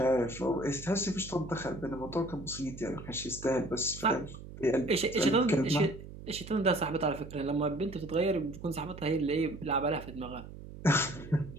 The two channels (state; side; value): noise; right; hum, 13 dB below the sound